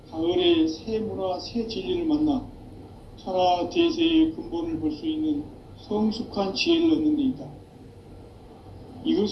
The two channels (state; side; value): identical; both; correlation 1.00